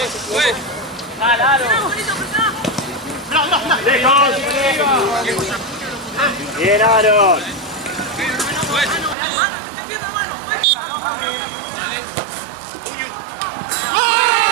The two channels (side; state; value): left; drops out; at 9.2 s